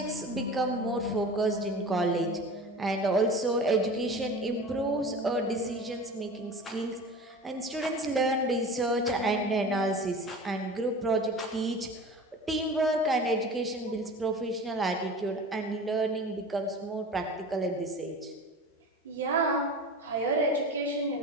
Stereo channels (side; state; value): both; normal; correlation 0.36